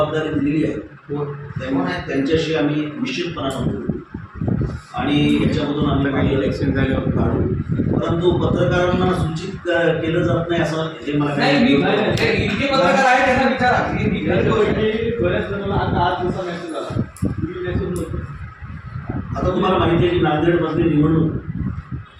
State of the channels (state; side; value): identical; both; correlation 1.00